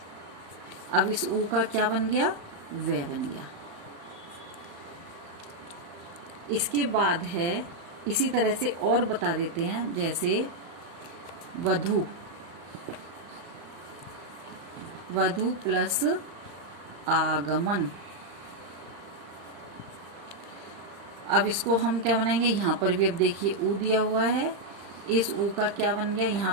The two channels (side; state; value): left; late; 35 ms